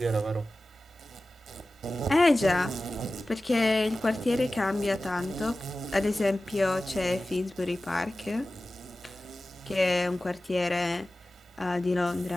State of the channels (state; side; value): normal; both; correlation 0.96